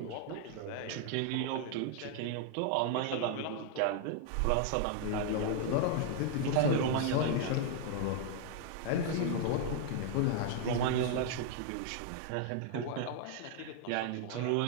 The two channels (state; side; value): different; both; correlation 0.00